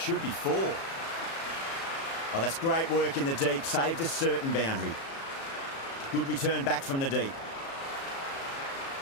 be four. Oh, that's great work in the deep. Saved a certain boundary. Good return back from the deep.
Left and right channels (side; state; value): right; late; 36 ms